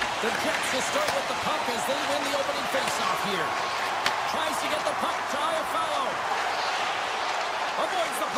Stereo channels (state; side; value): identical; both; correlation 1.00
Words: The Jets will start with the puck as they win the opening faceoff here. Tries to get the puck to Iafallo. Avoids the